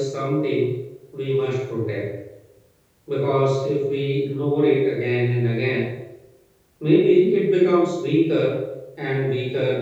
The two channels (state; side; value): identical; both; correlation 1.00